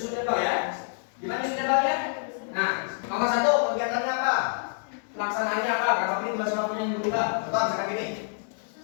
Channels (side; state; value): right; silent; digital silence